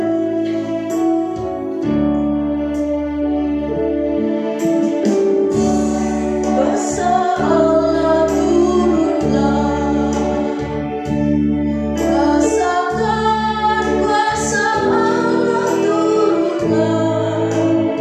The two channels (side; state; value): both; identical; correlation 1.00